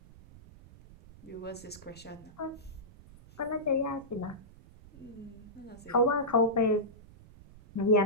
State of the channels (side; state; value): right; noise; rumble, 21 dB below the sound